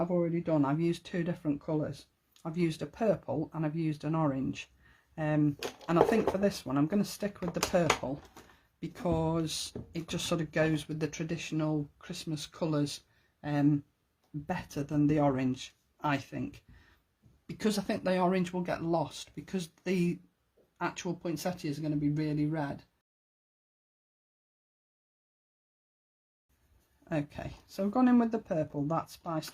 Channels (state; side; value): identical; both; correlation 1.00